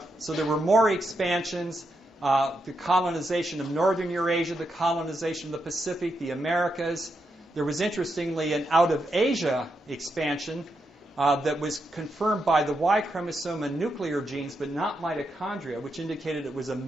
So there were more expansions, the colonization of northern Eurasia, the colonization of the Pacific, the Americas. There was, interestingly, an out-of-Asia expansion that was confirmed by the Y chromosome and nuclear genes, but not mitochondria, which indicated it was a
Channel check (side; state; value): both; normal; correlation 0.83